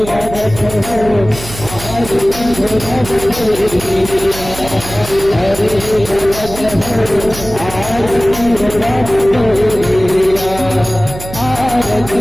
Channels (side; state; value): right; noise; hum, 12 dB below the sound